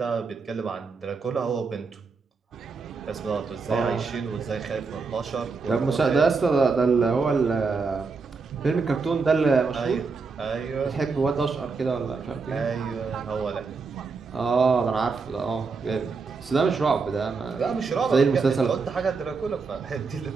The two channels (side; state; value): left; quieter; 4.6 dB